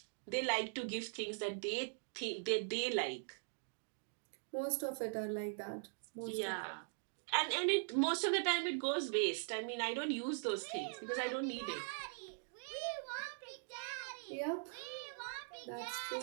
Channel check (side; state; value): left; silent; digital silence